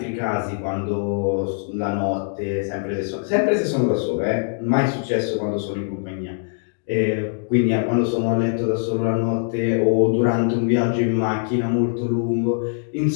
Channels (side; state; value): right; silent; digital silence